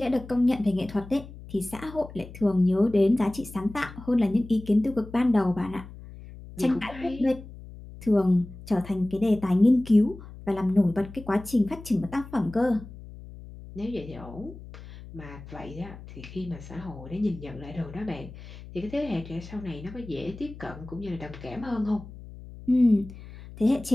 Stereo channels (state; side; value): noise; left; hum, 16 dB below the sound